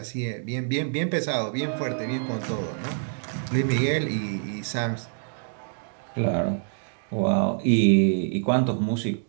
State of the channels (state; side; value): silent; left; 61 dB below the other